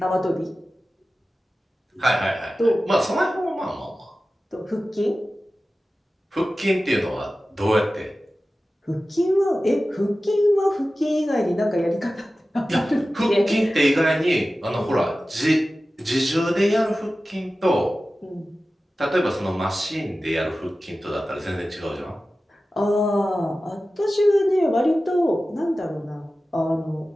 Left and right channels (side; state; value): both; normal; correlation 0.95